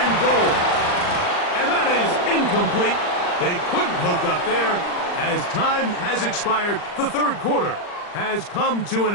goal. And that is incomplete. They couldn't hook up there. As time has expired, the 3rd quarter has come to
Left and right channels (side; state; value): right; late; 39 ms